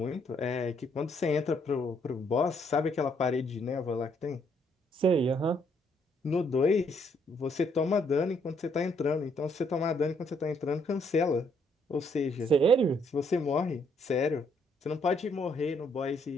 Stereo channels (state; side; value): normal; both; correlation 0.70